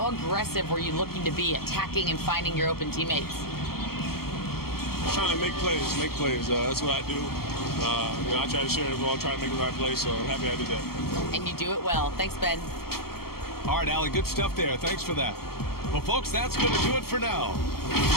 aggressive were you looking to be, attacking and finding your open teammates? Trying to make plays. That's what I do. I try to share the ball, try to make the right play, so I'm happy I did that. And you do it well. Thanks, Ben. All right, Allie, good stuff there. Thanks for that. Well, folks, that's going to do it for now.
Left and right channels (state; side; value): late; right; 0.95 ms